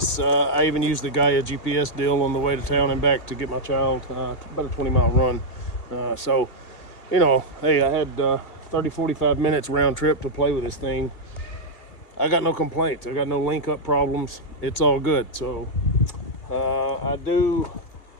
I even used the Gaia GPS deal on the way to town and back to get my child about a 20-mile run. So, you know, hey, I had 30-45 minutes round trip to play with this thing. I got no complaints. I got no link up problems. It's all good. So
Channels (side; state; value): right; late; 2.1 ms